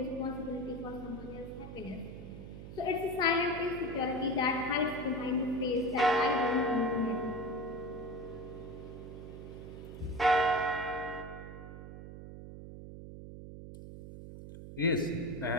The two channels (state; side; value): noise; right; hum, 12 dB below the sound